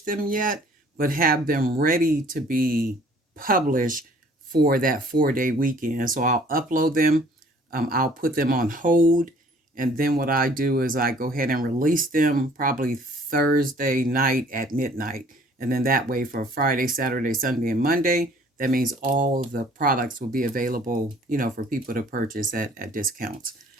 them yet, but have them ready to be published for that 4-day weekend. So I'll upload them, I'll put them on hold, and then what I do is I go ahead and release them probably Thursday night at midnight. And then that way for Friday, Saturday, Sunday, and Monday, that means all the products will be available, for people to purchase at discounts.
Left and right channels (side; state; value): both; normal; correlation 0.55